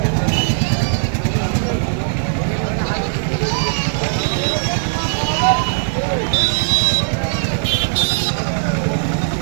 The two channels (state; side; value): silent; left; digital silence